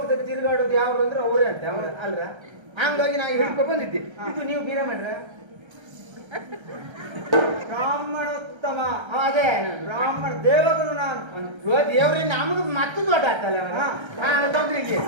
ತಿರುಗಾಡೋದು ಯಾವ್ದು ಅಂದ್ರೆ ಅವರೇ ಅಂತ ಅಲ್ರ. ಹಂಗಾಗಿ ನಾವು ಹಿಡ್ಕೊ ಬಂದಿದ್ದೆ. ಇದು ನೀವು ಬ್ರಾಹ್ಮಣರ ಬ್ರಾಹ್ಮಣೋತ್ತಮ. ಅದೇ ಬ್ರಾಹ್ಮಣ ದೇವಗುರು ನಾನು. ದೇವ್ರಿ ನಮಗ್ ಮತ್ತೆ ದೊಡ್ಡ ಆಗ್ತಲ್ಲ ತೊಂದ್ರೆ ಇಲ್ಲಿ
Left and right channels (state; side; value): late; left; 1.3 ms